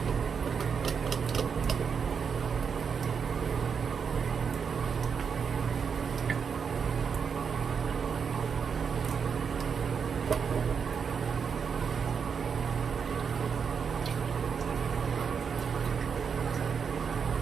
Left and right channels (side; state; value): left; quieter; 6.3 dB